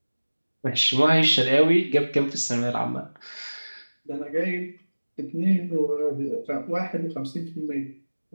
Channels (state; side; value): inverted; both; correlation -1.00